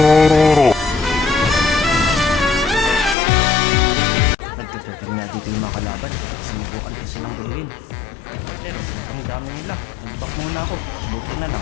Nagtuturtle nga dito yung mga kalaban kaya sinubukan ko silang guluhin. Pero sobrang dami nila, nag-back muna ako, buti na lang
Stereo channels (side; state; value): right; drops out; at 3.2 s